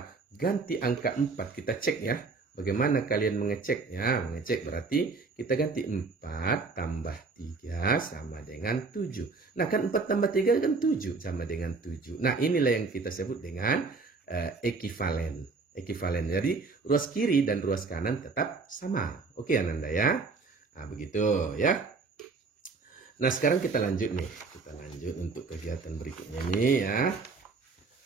ganti angka 4, kita cek ya. Bagaimana kalian mengecek? Ya, mengecek berarti kita ganti 4 tambah 3 sama dengan 7. Nah, kan 4 tambah 3 kan 7 sama dengan 7. Nah, inilah yang kita sebut dengan ekivalen. Ekivalen. Jadi, ruas kiri dan ruas kanan tetap sama. Oke, Ananda ya. Nah, begitu ya. Nah, sekarang kita lanjut nih. Kita lanjut untuk kegiatan berikutnya nih ya.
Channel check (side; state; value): left; quieter; 4.2 dB